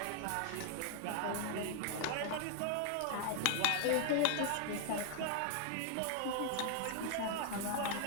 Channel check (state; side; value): different; both; correlation 0.00